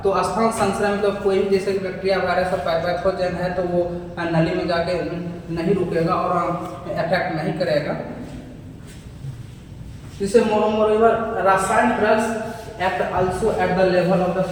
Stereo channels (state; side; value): identical; both; correlation 1.00